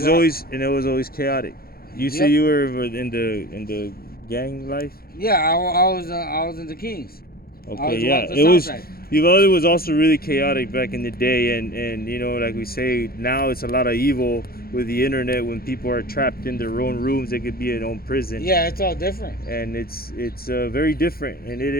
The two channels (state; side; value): late; right; 0.44 ms